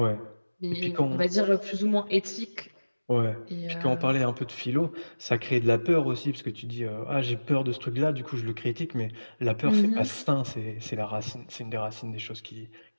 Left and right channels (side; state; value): both; inverted; correlation -1.00